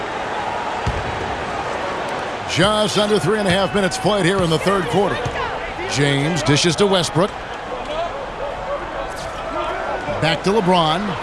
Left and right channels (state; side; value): identical; both; correlation 1.00